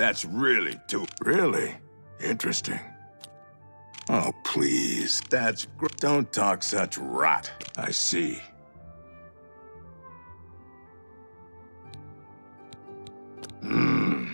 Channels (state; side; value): inverted; both; correlation -1.00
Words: really too... Really? Interesting. Oh, please. That's great. Don't talk such rot. I see.